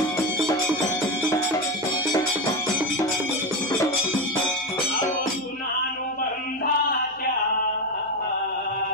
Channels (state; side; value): noise; left; hum, 29 dB below the sound